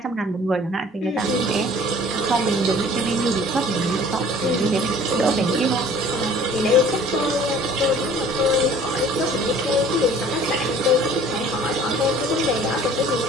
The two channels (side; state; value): both; normal; correlation 0.50